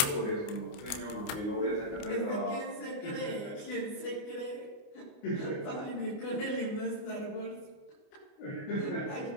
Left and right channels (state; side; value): late; right; 29 ms